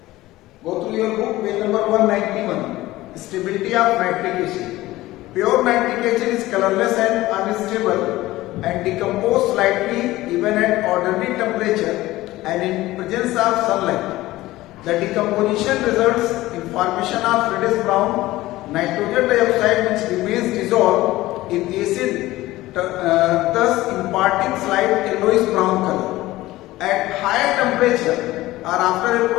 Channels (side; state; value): right; quieter; 17.4 dB